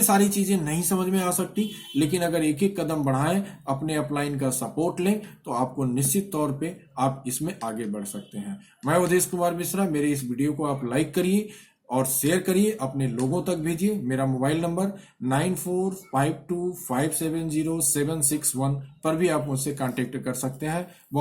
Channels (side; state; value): both; identical; correlation 1.00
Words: सारी चीजें नहीं समझ में आ सकती, लेकिन अगर एक एक कदम बढ़ाएं, अपने अपलाइन का सपोर्ट लें, तो आपको निश्चित तौर पे आप इसमें आगे बढ़ सकते हैं। मैं उदेश कुमार मिश्रा, मेरे इस वीडियो को आप लाइक करिए और शेयर करिए, अपने लोगों तक भेजिए। मेरा मोबाइल नंबर 9452570761 पर भी आप मुझसे कांटेक्ट कर सकते हैं।